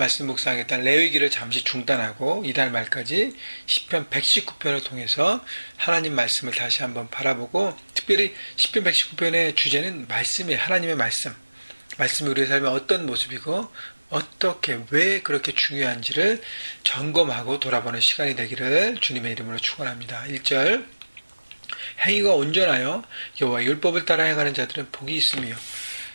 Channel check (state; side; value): inverted; both; correlation -1.00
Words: 묵상했던 레위기를 잠시 중단하고 이달 말까지 시편 119편을 통해서 하나님 말씀을 다시 한번 바라보고, 특별히 시편 119편의 주제는 말씀이에요. 하나님의 말씀이 우리의 삶에 어떤 모습이고 어떻게 왜 그렇게 중요한지를 점검하고 돌아보는 시간이 되기를 주님의 이름으로 축원합니다. 1절, 행위가 온전하여 여호와의 율법을 따라 행하는 자들은 복이 있으며.